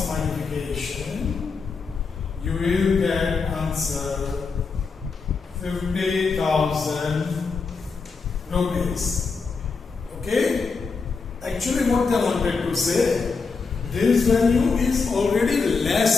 multiplication, you will get answer 50,000 rupees. Okay? Actually what they wanted to say, this value is already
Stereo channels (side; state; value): right; quieter; 4.8 dB